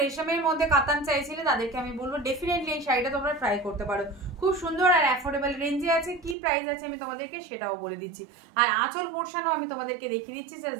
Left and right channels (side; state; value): left; drops out; at 6.4 s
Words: রেশমের মধ্যে কাতান চাইছিলে তাদেরকে আমি বলবো ডেফিনেটলি এই শাড়িটা তোমরা ট্রাই করতে পারো। খুব সুন্দর আর অ্যাফোর্ডেবল রেঞ্জে আছে। কি প্রাইস আছে আমি তোমাদেরকে সেটাও বলে দিচ্ছি। আর আঁচল পোর্শনও আমি তোমাদেরকে দেখিয়ে দিচ্ছি,